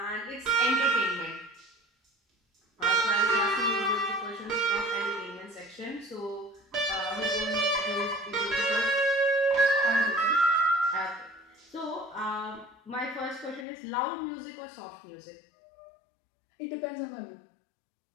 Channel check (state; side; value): drops out; right; at 13.7 s